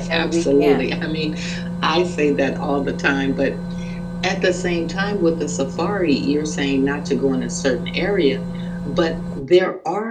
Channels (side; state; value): both; identical; correlation 1.00